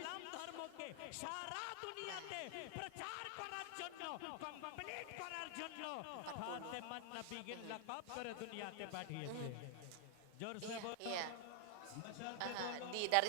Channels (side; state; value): both; different; correlation 0.00